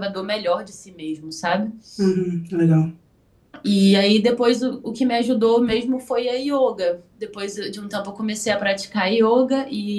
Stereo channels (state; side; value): identical; both; correlation 1.00